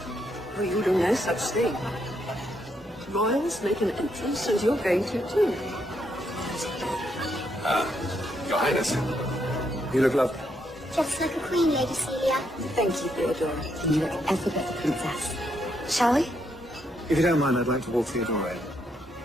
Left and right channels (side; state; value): both; normal; correlation 0.77